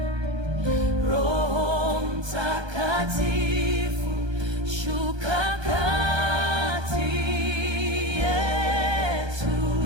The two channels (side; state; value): left; late; 1.3 ms